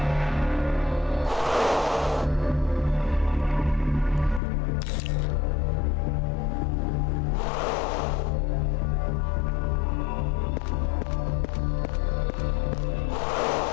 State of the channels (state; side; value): drops out; right; at 4.4 s